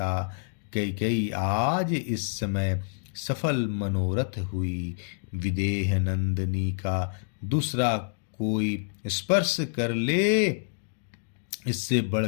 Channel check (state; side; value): silent; right; digital silence